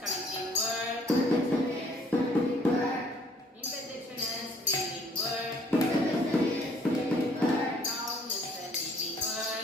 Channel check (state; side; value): normal; both; correlation 0.61